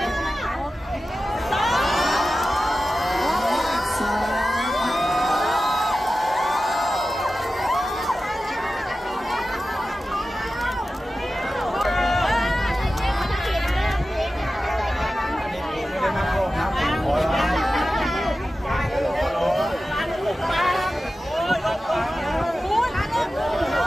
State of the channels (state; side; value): normal; both; correlation 0.94